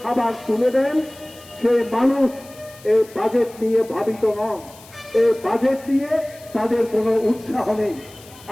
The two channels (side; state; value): left; noise; hiss, 22 dB below the sound